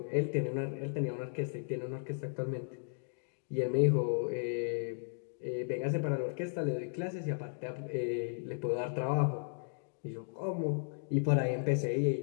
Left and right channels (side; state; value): right; silent; digital silence